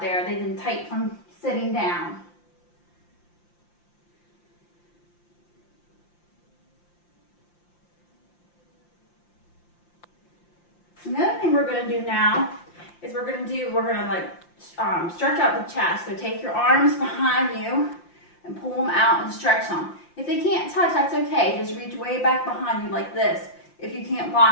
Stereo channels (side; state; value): right; late; 5.8 ms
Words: They've been tight from sitting down. Another thing we're going to do now is we're going to stretch out the chest. So take your arms behind you and pull them out and stretch them. If they can't touch, that's okay. Just reach way back behind you like this if you can't